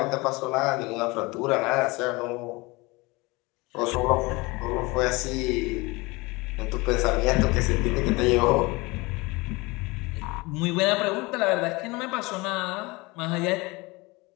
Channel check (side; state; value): right; quieter; 24.1 dB